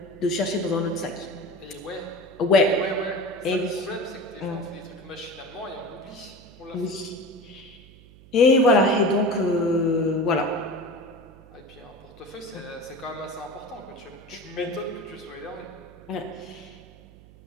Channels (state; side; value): noise; right; hum, 22 dB below the sound